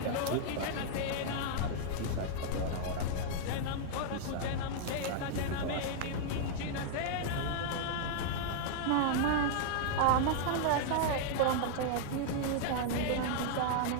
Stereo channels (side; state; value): both; different; correlation -0.01